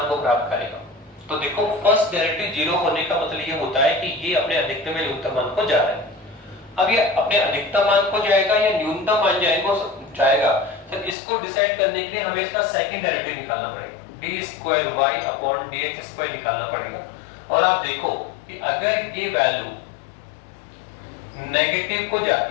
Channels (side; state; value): right; drops out; at 11.2 s